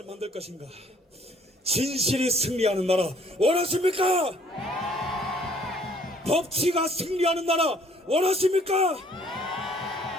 만들 것인가? 진실이 승리하는 나라 원하십니까? 법치가 승리하는 나라 원하십니까?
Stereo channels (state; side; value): normal; both; correlation 0.60